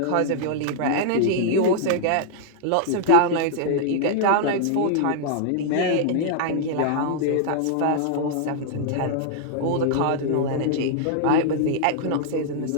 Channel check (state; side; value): different; both; correlation -0.01